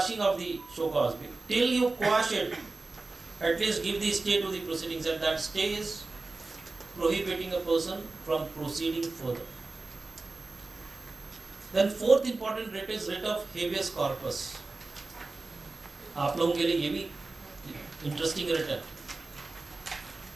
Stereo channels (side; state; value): left; quieter; 3.4 dB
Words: of the show cause. Till you quash it, at least give the stay to the proceedings, and that stay is prohibiting a person from proceeding further. Then fourth important writ is writ of habeas corpus. आप लोगों के लिए ये भी interesting writ है.